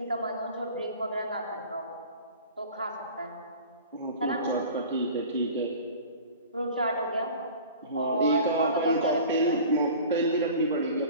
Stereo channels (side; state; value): both; inverted; correlation -0.41